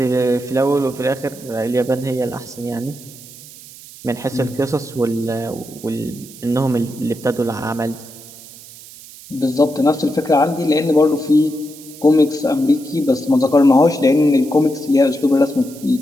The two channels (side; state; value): right; noise; hiss, 18 dB below the sound